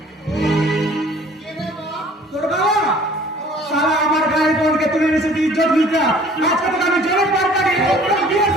তোর বাবা সারা আমার গায়ের বোনকে তুলে এনেছে ইজ্জত মিটা। আজকে তোকে আমি জলের পার কাটি বিয়ে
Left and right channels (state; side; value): normal; both; correlation 0.52